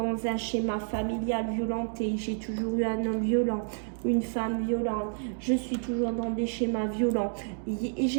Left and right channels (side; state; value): left; silent; digital silence